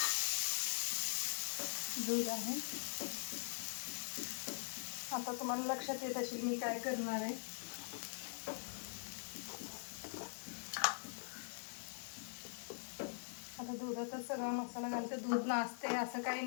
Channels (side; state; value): right; silent; digital silence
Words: आहे. आता तुम्हाला लक्षात येत असेल मी काय करणार आहे. आता दुधातच सगळा मसाला घालते. दूध नाचते असं काही